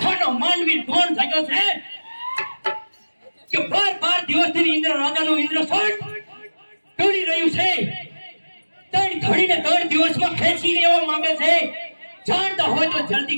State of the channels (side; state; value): both; inverted; correlation -1.00